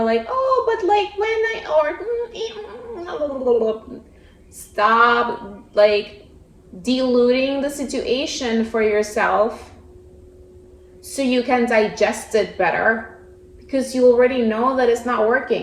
like, oh, but like when I, or stop like diluting the situation for yourself so you can digest it better, because you already know that it's not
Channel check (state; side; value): identical; both; correlation 1.00